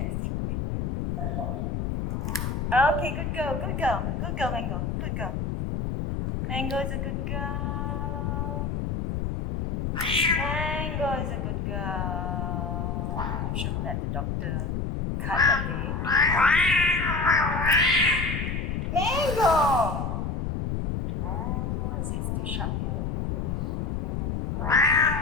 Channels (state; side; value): noise; left; rumble, 1 dB below the sound